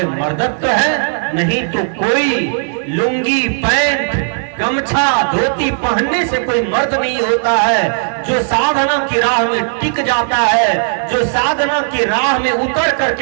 मर्दत्व है, नहीं तो कोई लुंगी, पैंट, गमछा, धोती पहनने से कोई मर्द नहीं होता है। जो साधना की राह में टिक जाता है, जो साधना की राह में उतर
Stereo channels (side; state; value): left; silent; digital silence